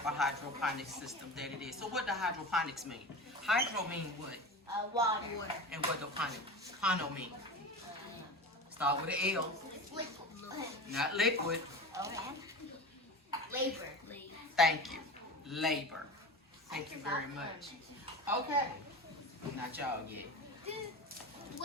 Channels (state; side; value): normal; both; correlation 0.30